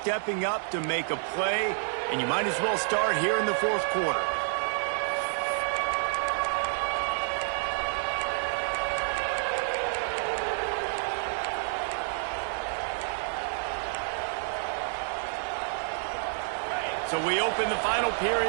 up to make a play, and you might as well start here in the fourth quarter. So we open the final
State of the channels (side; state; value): left; silent; digital silence